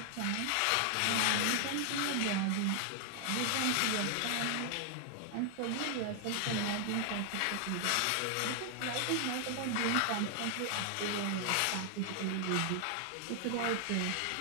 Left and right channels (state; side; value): different; both; correlation 0.00